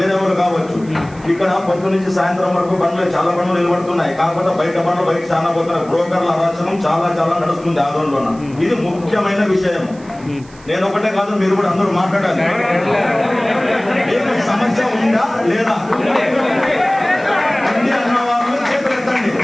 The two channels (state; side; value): noise; right; hiss, 26 dB below the sound